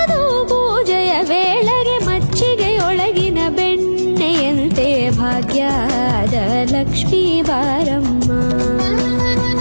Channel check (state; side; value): inverted; both; correlation -1.00